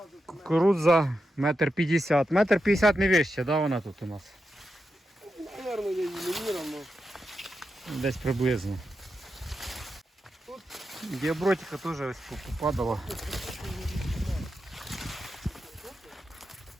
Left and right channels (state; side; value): normal; both; correlation 0.88